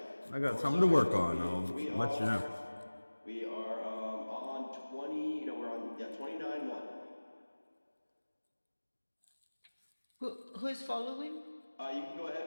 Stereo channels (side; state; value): both; inverted; correlation -1.00